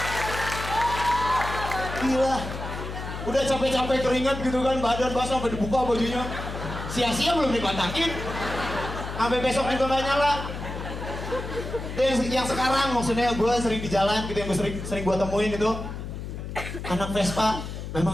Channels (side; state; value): left; noise; hum, 8 dB below the sound